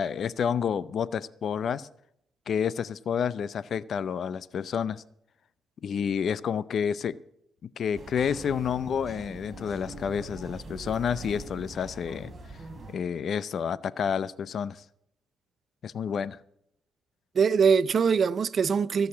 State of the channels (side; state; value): both; normal; correlation 0.75